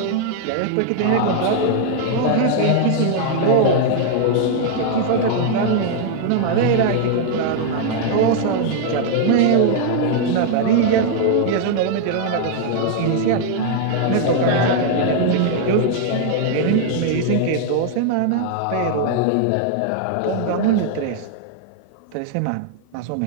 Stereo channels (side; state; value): both; different; correlation 0.00